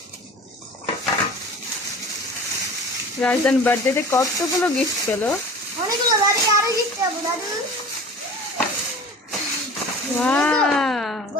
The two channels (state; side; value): normal; both; correlation 0.40